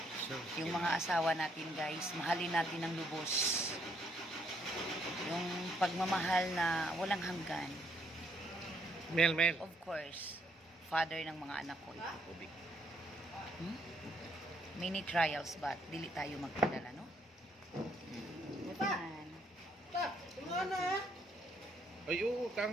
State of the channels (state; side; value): normal; both; correlation 0.71